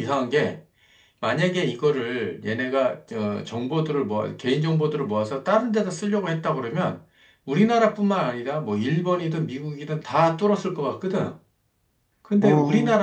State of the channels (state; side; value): identical; both; correlation 1.00